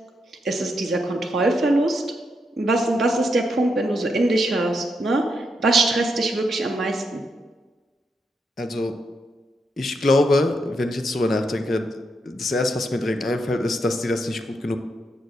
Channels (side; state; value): both; normal; correlation 0.81